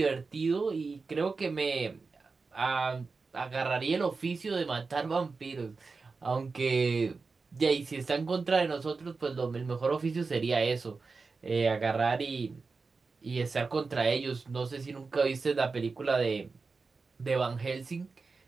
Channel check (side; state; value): left; quieter; 4.4 dB